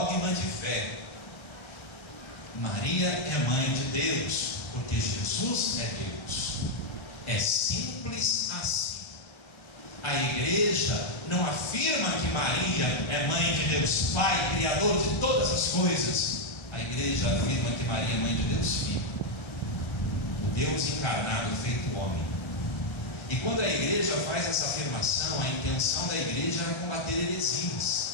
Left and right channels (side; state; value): right; late; 1.3 ms